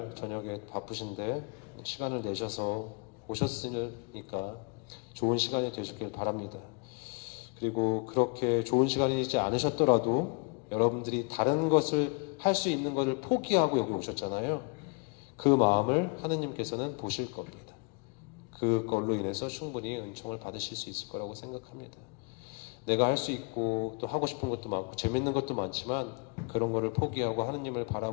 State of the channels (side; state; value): right; quieter; 33.1 dB